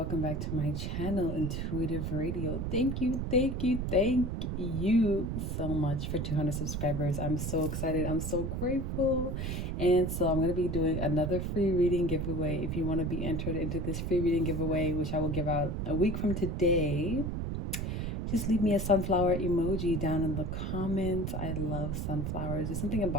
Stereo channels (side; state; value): right; noise; rumble, 2 dB below the sound